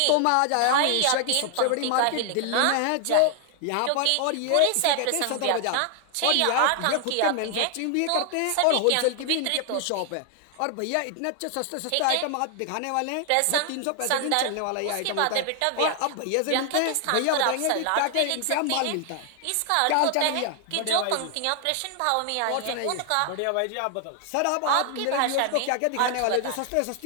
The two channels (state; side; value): different; both; correlation 0.00